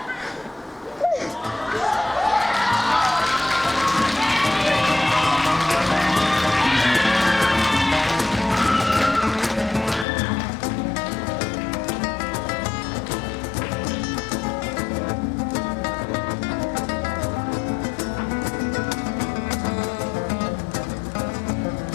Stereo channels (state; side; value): drops out; right; at 10.1 s